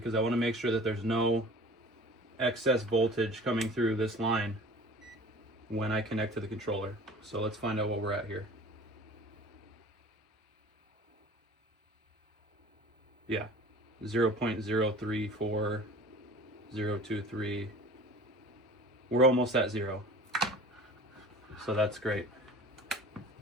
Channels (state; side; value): normal; both; correlation 0.43